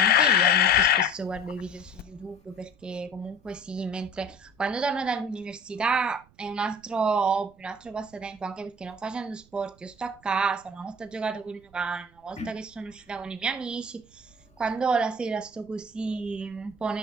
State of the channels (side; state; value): right; noise; rumble, 29 dB below the sound